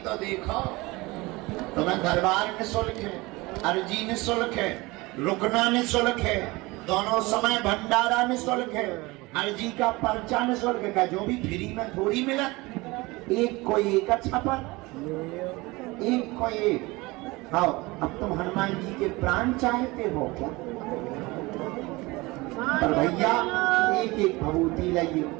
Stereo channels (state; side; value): quieter; left; 22.6 dB